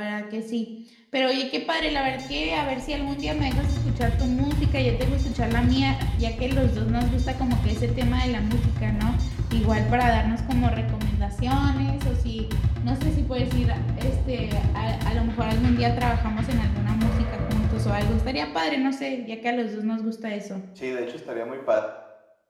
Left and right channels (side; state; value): both; identical; correlation 1.00